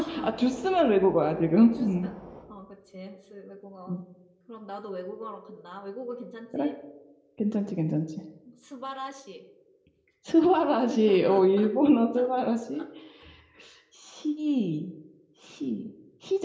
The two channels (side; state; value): both; identical; correlation 1.00